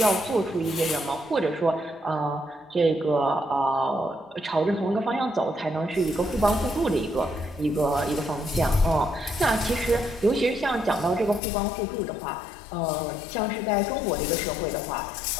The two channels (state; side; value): drops out; right; at 11.4 s